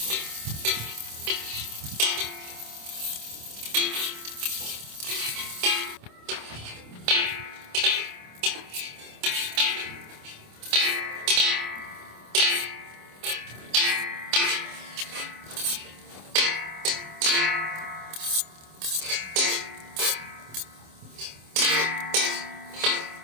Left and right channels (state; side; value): late; left; 26 ms